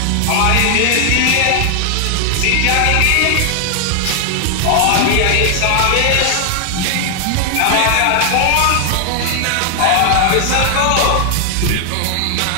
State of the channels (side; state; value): both; different; correlation 0.00